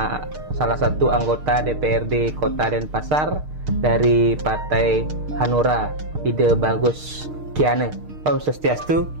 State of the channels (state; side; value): late; left; 6.5 ms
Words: salah satu anggota DPRD Kota Denpasar dari Partai Hanura, Ide Bagus Kiane. Om Swastiastu,